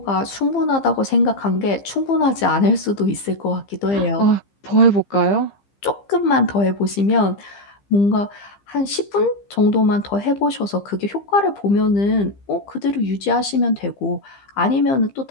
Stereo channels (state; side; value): late; right; 15 ms